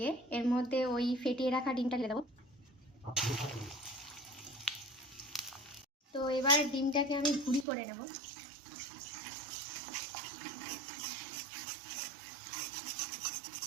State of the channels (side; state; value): left; drops out; at 7.7 s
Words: এর মধ্যে ওই ফেটিয়ে রাখা ডিমটা ঢেলে দেবো। তো এবার ডিমটাকে আমি ভুড়ি করে নেব।